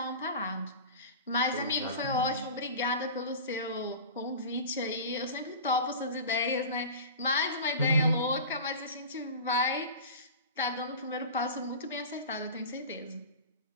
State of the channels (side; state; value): both; inverted; correlation -0.34